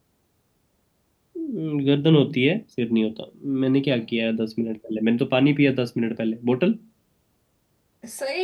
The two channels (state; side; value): identical; both; correlation 1.00